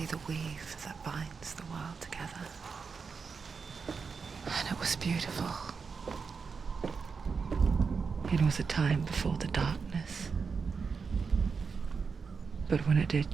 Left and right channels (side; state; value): left; quieter; 5.3 dB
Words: the weave that binds the world together. And it was beautiful. It was a time before the darkness. But when it did